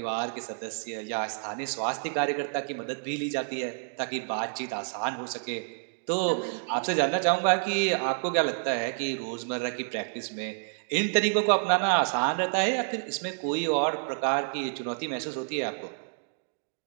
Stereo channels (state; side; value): silent; left; digital silence